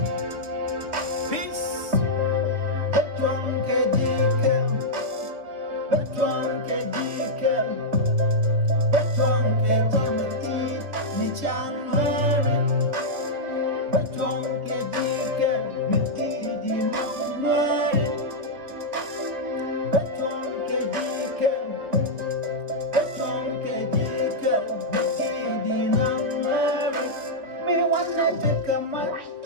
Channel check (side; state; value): left; late; 3.0 ms